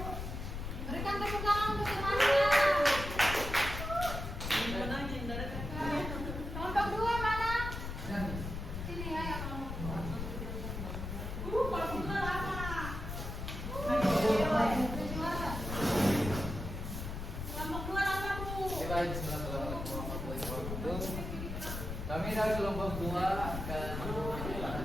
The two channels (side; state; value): left; noise; rumble, 6 dB below the sound